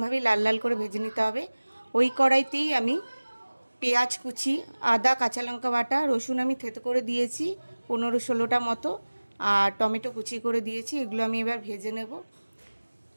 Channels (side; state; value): both; inverted; correlation -1.00